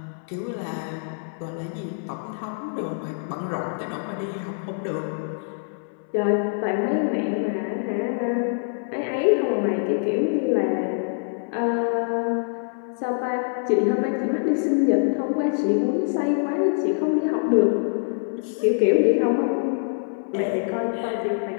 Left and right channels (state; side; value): silent; right; 62 dB below the other